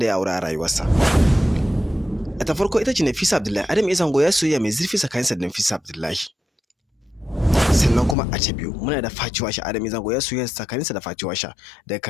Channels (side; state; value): right; drops out; at 8.2 s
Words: ya aura a rayuwarsa. A ta farko ita ce Nafisa Abdullahi. Adam A Zango ya soyayya mai zurfi tsakaninsa da Nafisa Abdullahi. Sannan kuma a ta biyu muna da Fati Washa. Adam A Zango ya soyayya tsakaninsa da Fati Washa, daga